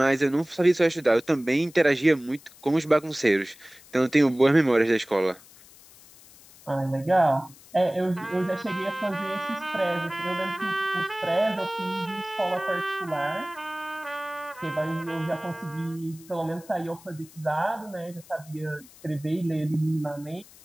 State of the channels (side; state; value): left; noise; hiss, 23 dB below the sound